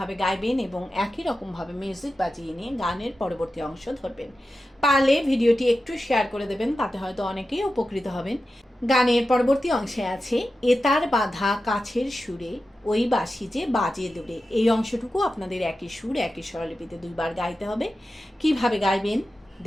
গাইবেন এবং একই রকমভাবে মিউজিক বাজিয়ে নিয়ে গানের পরবর্তী অংশ ধরবেন। পারলে ভিডিওটি একটু শেয়ার করে দেবেন, তাতে হয়তো অনেকেই উপকৃত হবেন। গানের পরবর্তী অংশে আছে এতার বাঁধা কাছের সুরে ওই বাঁশি যে বাজে দূরে। এই অংশটুকু আপনাদের একই সুর একই স্বরলিপিতে দুইবার গাইতে হবে। কিভাবে গাইবেন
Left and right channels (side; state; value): both; normal; correlation 0.92